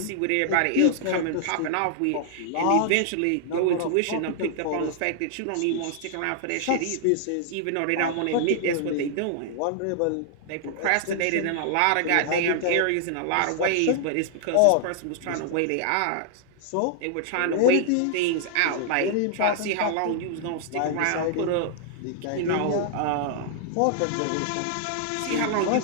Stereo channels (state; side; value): different; both; correlation -0.01